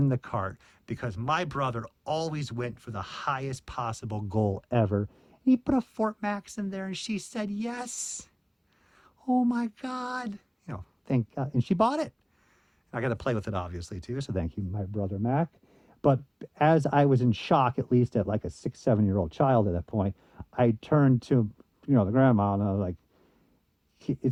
the cart because my brother always went for the highest possible goal ever. He put a Fort Max in there, and she said yes. Oh my God. You know, thank God. And she bought it. I got to play with it, obviously, too. So thank you, my brother Mac. But as I was in shock, at least at like a 6-7-year-old child at that point, I turned to, the grandma, and I was like,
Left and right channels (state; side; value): identical; both; correlation 1.00